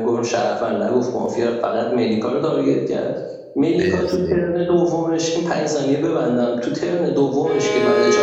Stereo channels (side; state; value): both; identical; correlation 1.00